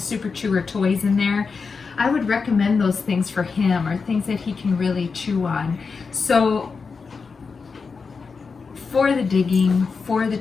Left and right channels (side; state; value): right; quieter; 5.0 dB